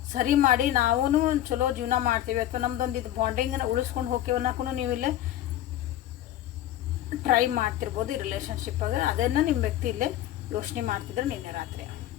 ಸರಿ ಮಾಡಿ ನಾವು ಚಲೋ ಜೀವನ ಮಾಡ್ತೀವಿ ಅಥವಾ ನಮ್ದೊಂದು ಇದು ಬಾಂಡಿಂಗನ್ನು ಉಳಿಸ್ಕೊಂಡು ಹೋಗ್ತೀವಿ ಅನ್ನೋಕ್ಕೂ ನೀವು ಇಲ್ಲೇ ಟ್ರೈ ಮಾಡ್ತಿರ್ಬೋದು ಈ ರಿಲೇಷನ್ಶಿಪ್ಪಾಗ. ಅದನ್ನು ನಿಮ್ಮ ವ್ಯಕ್ತಿ ಇಲ್ಲೇ ಯೋಚನೆ ಮಾಡ್ತಿದ್ರೆ ನಿನ್ನೆ ರಾತ್ರಿ.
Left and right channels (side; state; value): right; quieter; 13.1 dB